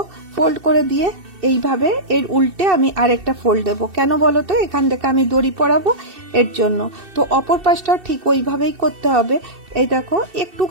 ফোল্ড করে দিয়ে এইভাবে এর উল্টে আমি আরেকটা ফোল্ড দেব। কেন বলো তো, এখান থেকে আমি দড়ি পরাবো এর জন্য। তো অপর পাশটা ঠিক ওইভাবেই করতে হবে। এই দেখো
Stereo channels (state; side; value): late; left; 2.7 ms